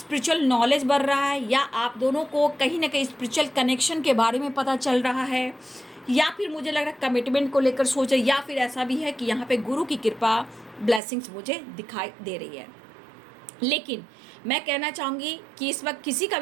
नॉलेज बढ़ रहा है, या आप दोनों को कहीं ना कहीं स्पिरिचुअल कनेक्शन के बारे में पता चल रहा है, या फिर मुझे लग रहा है कमिटमेंट को लेकर सोच रहे, या फिर ऐसा भी है कि यहाँ पे गुरु की कृपा, ब्लेसिंग्स मुझे दिखाई दे रही है। लेकिन मैं कहना चाहूँगी कि इस वक्त किसी का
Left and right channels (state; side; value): drops out; left; at 11.0 s